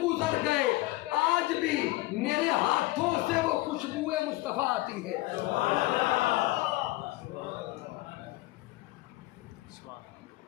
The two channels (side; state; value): right; quieter; 19.5 dB